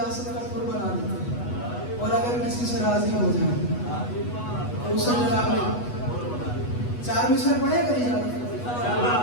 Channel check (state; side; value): late; right; 8.2 ms